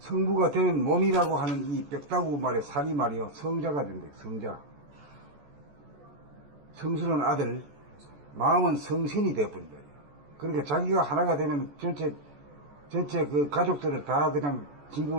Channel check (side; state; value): left; late; 14 ms